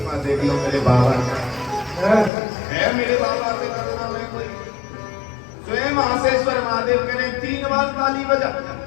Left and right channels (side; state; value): right; drops out; at 2.3 s